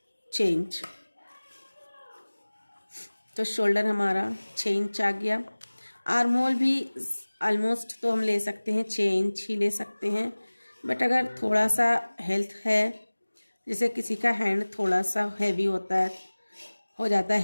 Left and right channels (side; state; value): both; inverted; correlation -1.00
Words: 6 इंच। तो शोल्डर हमारा 6 इंच आ गया। आर्म होल भी ऑलमोस्ट तो हम ले सकते हैं 6 इंच ही ले सकते हैं, बट अगर थोड़ा सा हेल्थ है, जैसे किसी का हैंड थोड़ा सा हैवी होता है, हो जाता है